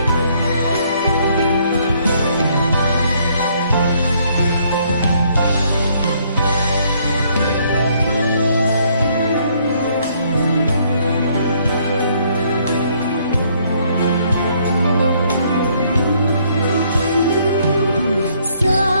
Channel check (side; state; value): both; inverted; correlation -0.67